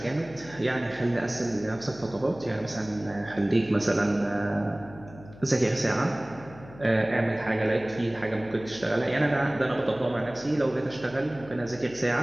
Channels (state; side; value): noise; left; hum, 19 dB below the sound